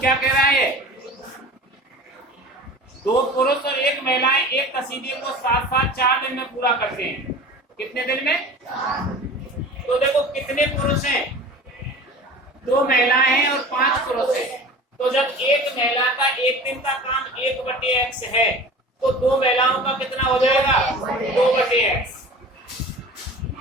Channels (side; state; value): both; normal; correlation 0.39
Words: कह रहा है? दो पुरुष और एक महिलाएं एक कसीदे को साथ साथ 4 दिन में पूरा करते हैं। कितने दिन में? तो देखो कितने पुरुष हैं? 2 महिलाएं हैं और 5 पुरुष हैं। तो जब एक महिला का एक दिन का काम 1/x है तो 2 महिलाओं का कितना हो जाएगा? 2/x